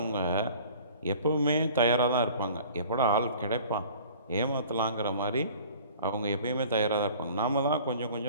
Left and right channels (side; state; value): both; inverted; correlation -0.47